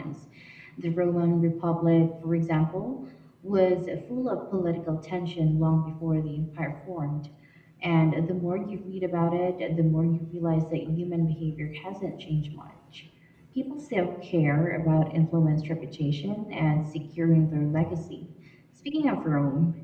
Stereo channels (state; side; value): identical; both; correlation 1.00